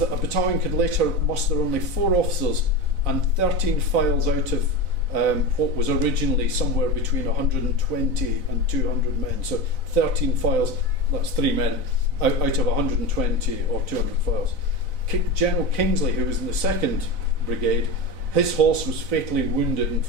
a battalion could later muster only 4 officers and 13 files out of what was originally somewhere between 120 and 200 men. So 13 files, that's 3 men, out of 120 or 200 files. General Kingsley, who was in the 2nd Brigade, his horse was fatally wounded in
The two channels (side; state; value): left; late; 4.0 ms